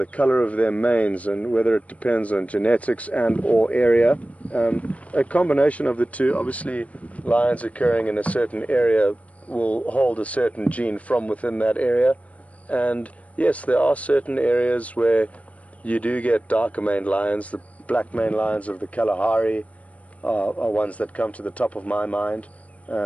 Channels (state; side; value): late; right; 0.066 ms